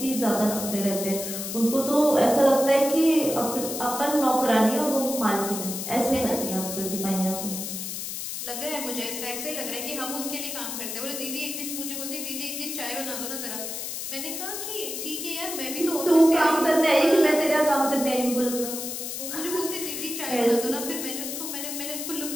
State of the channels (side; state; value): left; noise; hiss, 5 dB below the sound